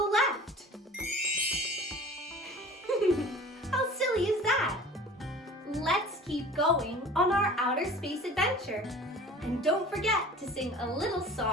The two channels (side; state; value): both; normal; correlation 0.43